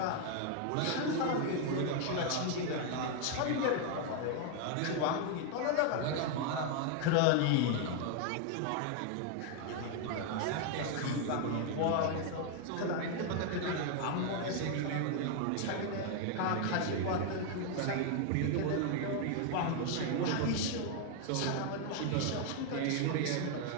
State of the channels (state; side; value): different; both; correlation 0.00